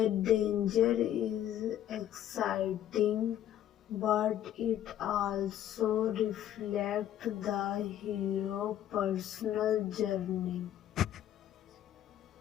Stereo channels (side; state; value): right; quieter; 11.4 dB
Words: danger is exciting, but it also reflects the hero's personal journey.